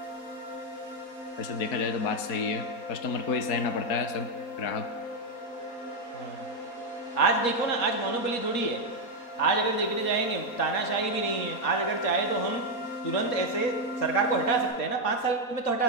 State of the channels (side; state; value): right; late; 4.2 ms